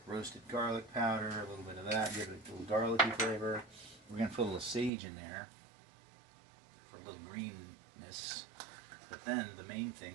roasted garlic powder, a little bit of that, give it a little garlicky flavor. We're going to put a little sage in there for a little greenness. But then the main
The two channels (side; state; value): left; drops out; at 4.9 s